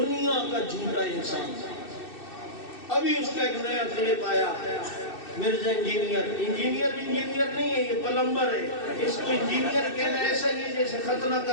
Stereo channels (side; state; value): right; late; 2.6 ms